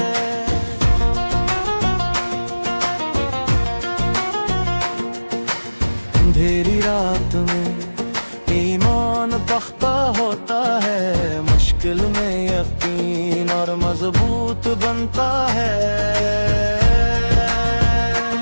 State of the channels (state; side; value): inverted; both; correlation -1.00